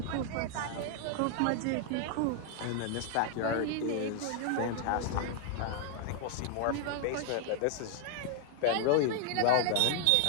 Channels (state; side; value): different; both; correlation 0.00